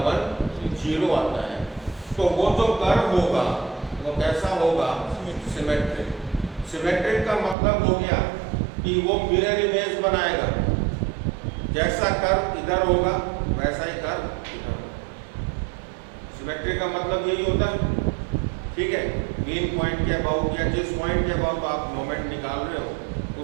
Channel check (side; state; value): left; drops out; at 7.6 s